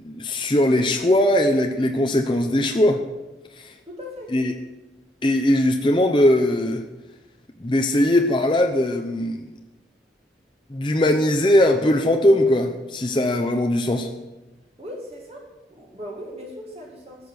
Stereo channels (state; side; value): normal; both; correlation 0.72